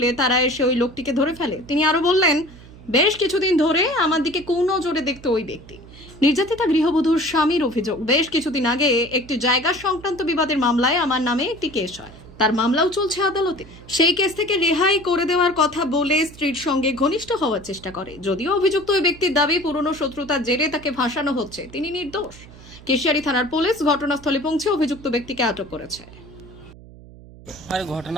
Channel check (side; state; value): right; noise; hum, 20 dB below the sound